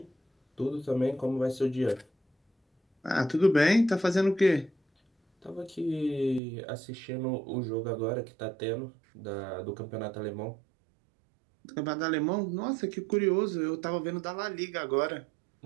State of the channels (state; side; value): drops out; left; at 6.4 s